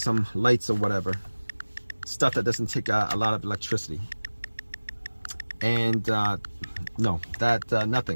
lights or whatever, stuff that doesn't take a lot of electricity. And no, that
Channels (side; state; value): both; inverted; correlation -1.00